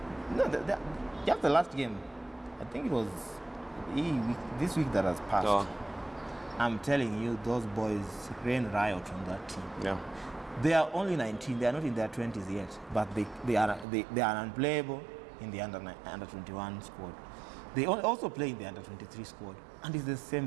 No, just the last game. I think it was this week that has passed. Oh. I'm telling you, those boys ran riot on that team. Yeah. They are only 19. They are not in their 20s yet, but they are unplayable in the under 21 squad. They also play in the under 23 squad, and it's the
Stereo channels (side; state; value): left; drops out; at 13.9 s